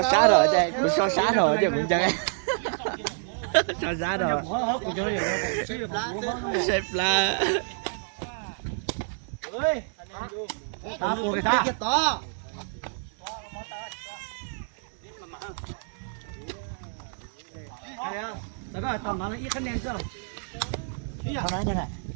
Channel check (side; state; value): left; silent; 59 dB below the other